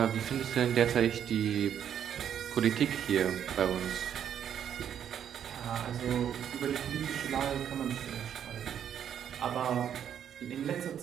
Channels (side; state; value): left; quieter; 9.2 dB